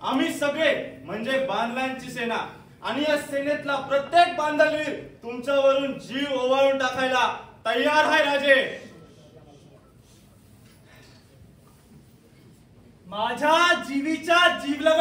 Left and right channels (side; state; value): both; identical; correlation 1.00